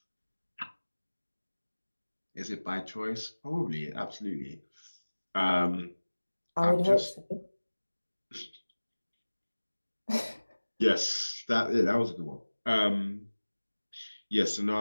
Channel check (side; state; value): both; inverted; correlation -1.00